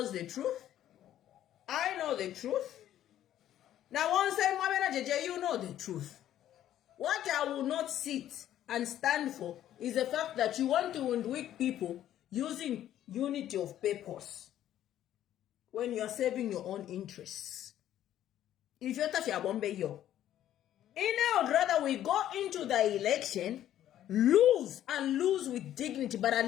the truth. I know the truth. Now once you know the truth. What I will not sit and stand for is the fact that you want to weak people using unity of purpose when you are serving your own interests. If you're touching a bombe yo, I would rather we go into the election, lose with dignity, but at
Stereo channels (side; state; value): right; quieter; 11.9 dB